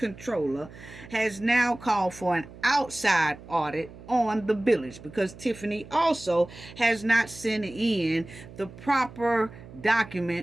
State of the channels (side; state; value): right; noise; hum, 17 dB below the sound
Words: has now called for an outside audit on the village because Tiffany also has not sent in the proper